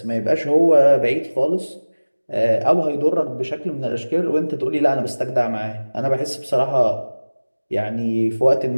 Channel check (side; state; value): both; inverted; correlation -1.00